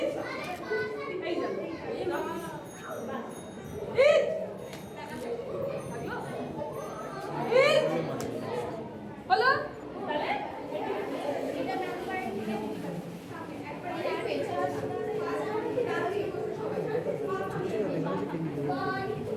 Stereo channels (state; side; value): identical; both; correlation 1.00